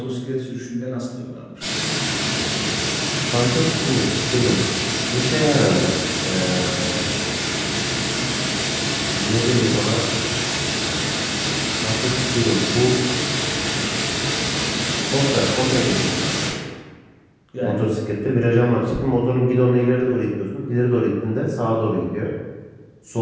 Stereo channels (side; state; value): both; identical; correlation 1.00